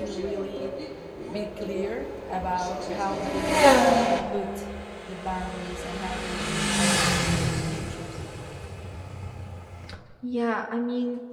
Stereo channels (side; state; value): both; identical; correlation 1.00